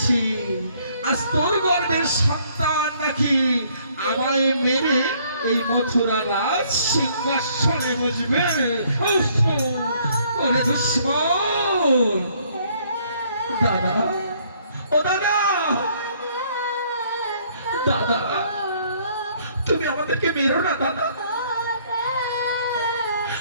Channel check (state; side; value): inverted; both; correlation -0.64